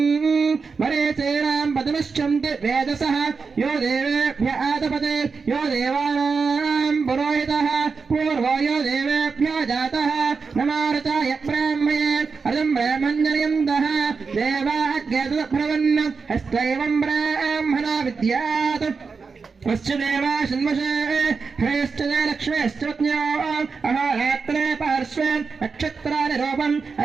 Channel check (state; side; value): quieter; left; 5.0 dB